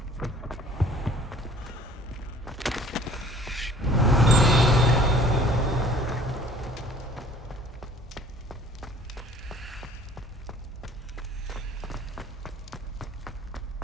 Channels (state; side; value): normal; both; correlation 0.52